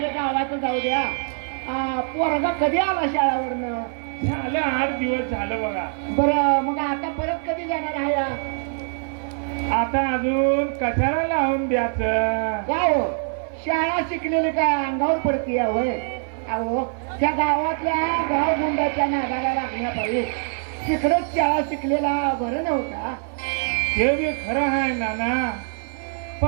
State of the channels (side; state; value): left; silent; 60 dB below the other